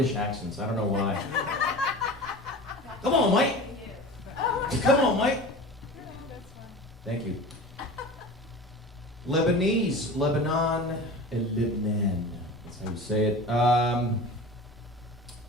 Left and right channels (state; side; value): normal; both; correlation 0.35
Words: accents. I don't know why. Come on, Mike. Come on, Mike. Thank you. Lebanese, Lebanon, and Lebanon. That's how you say it. I